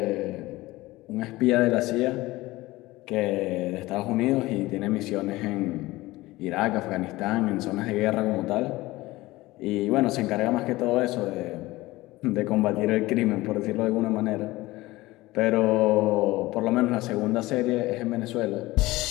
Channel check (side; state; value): right; quieter; 19.2 dB